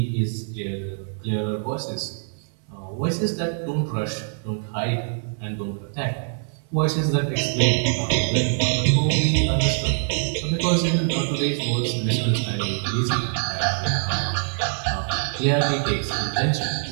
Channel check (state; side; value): silent; left; digital silence